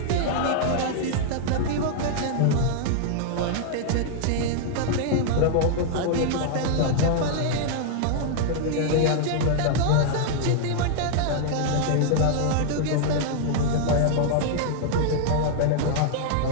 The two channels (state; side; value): different; both; correlation -0.01